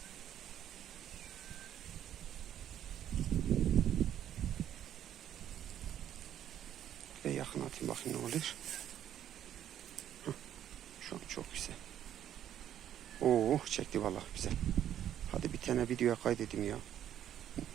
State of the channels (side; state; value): left; quieter; 10.7 dB